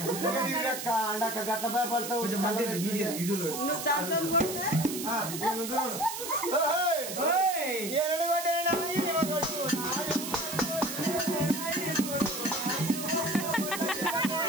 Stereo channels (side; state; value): right; noise; hiss, 6 dB below the sound